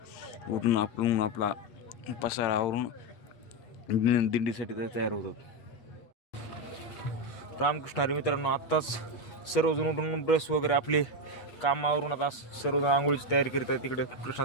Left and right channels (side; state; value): right; late; 8.3 ms